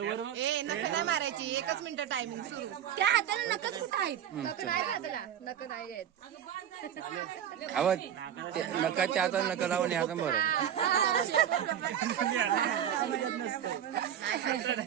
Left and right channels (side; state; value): left; quieter; 9.8 dB